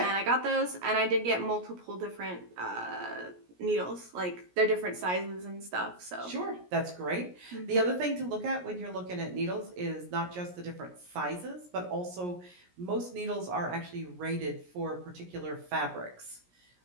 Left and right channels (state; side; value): late; left; 17 ms